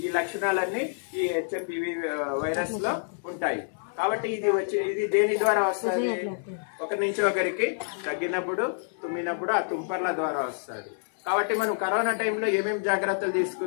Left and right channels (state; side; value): silent; right; digital silence